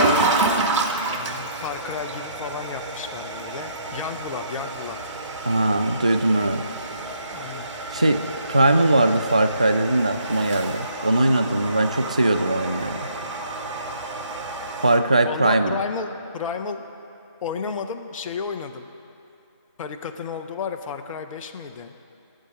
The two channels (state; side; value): inverted; both; correlation -0.67